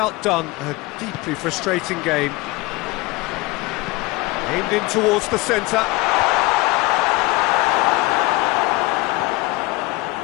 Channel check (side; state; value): right; quieter; 21.8 dB